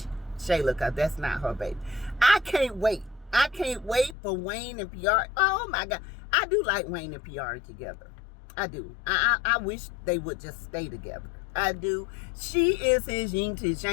Shayla, because that's not her baby. I can't wait. I can't wait for Wayne and Piari. Oh my God. I do like Wayne and Piari together. I do. I wish they would just stay together. I do. She is his yin to his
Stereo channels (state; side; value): drops out; right; at 4.2 s